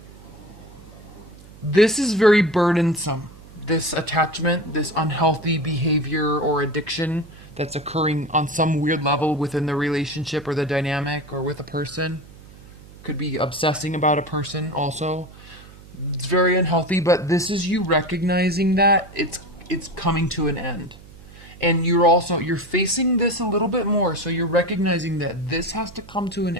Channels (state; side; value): noise; right; hum, 20 dB below the sound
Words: this is very burdensome. This attachment, this unhealthy behavior or addiction that's occurring on some weird level within the relationship or the dynamic or with a person. Could be obsessing about a person also. It's very unhealthy, but this is you recognizing that it's coming to an end. And you're facing this a little bit more, so you're recognizing that this has to come to an